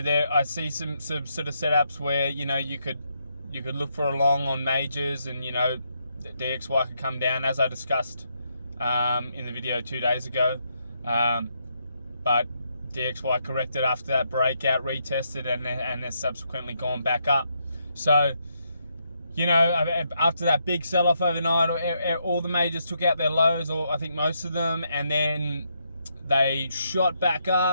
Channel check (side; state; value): both; inverted; correlation -0.78